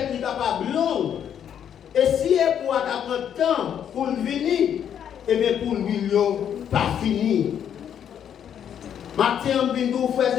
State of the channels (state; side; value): quieter; right; 9.0 dB